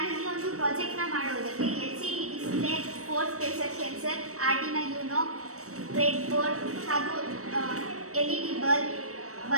ಈ ಒಂದು ಪ್ರಾಜೆಕ್ಟ್ನ ಮಾಡುವುದಕ್ಕೆ LCD display, force pressure sensor, Arduino YONO, bread board ಹಾಗೂ LED ಬಲ್ಬ್,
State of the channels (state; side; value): late; left; 0.65 ms